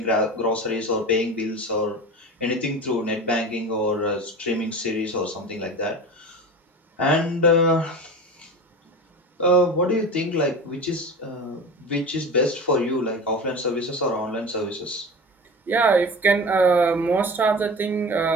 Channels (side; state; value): both; normal; correlation 0.32